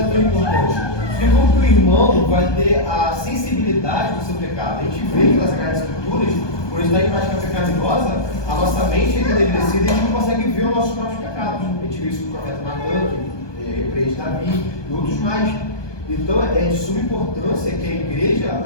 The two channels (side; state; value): right; late; 1.2 ms